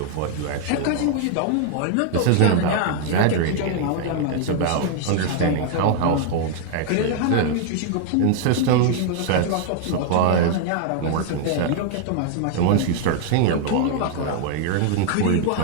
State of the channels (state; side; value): different; both; correlation 0.00